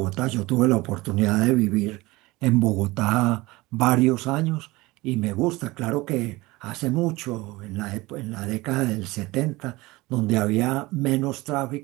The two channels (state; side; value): quieter; left; 21.1 dB